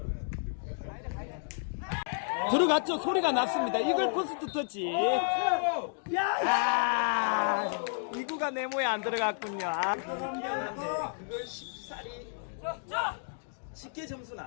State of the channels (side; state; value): right; silent; digital silence